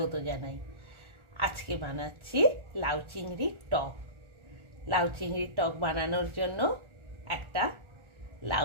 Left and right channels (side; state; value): left; late; 1.4 ms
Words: জানাই। আজকে বানাচ্ছি লাউ চিংড়ির টক। লাউ চিংড়ির টক বানানোর জন্য একটা লাউ